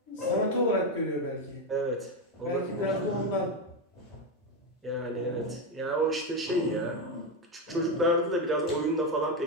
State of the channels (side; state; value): both; normal; correlation 0.10